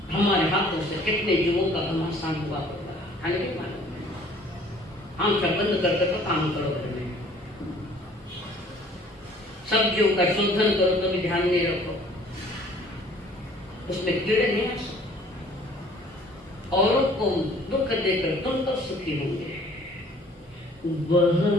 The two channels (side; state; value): both; normal; correlation 0.55